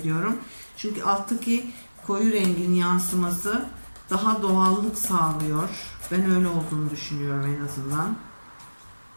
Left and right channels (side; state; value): both; inverted; correlation -1.00